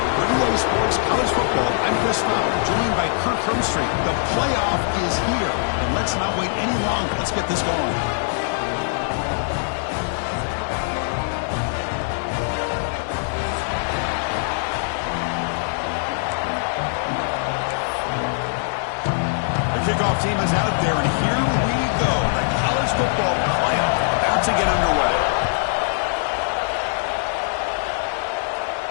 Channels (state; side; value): silent; right; digital silence